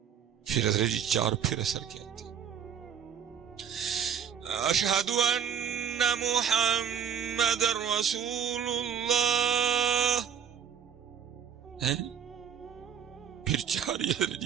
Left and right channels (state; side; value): quieter; left; 7.9 dB